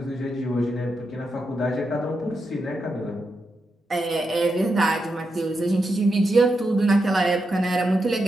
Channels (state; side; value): normal; both; correlation 0.85